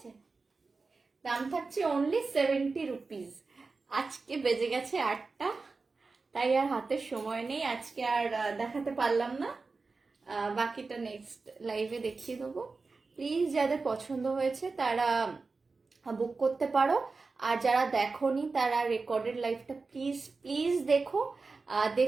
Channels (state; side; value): quieter; left; 4.1 dB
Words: দাম থাকছে অনলি 70 রুপিস। আজকে বেজে গেছে 8টা, তাই আর হাতে সময় নেই, আজকে আর দেখাতে পারলাম না। বাকিটা নেক্সট লাইভে দেখিয়ে দেবো। প্লিজ যাদের পছন্দ হয়েছে তারা বুক করতে পারো, আর যারা দেখোনি তারা রেকর্ডেড লাইভটা প্লিজ প্লিজ দেখো।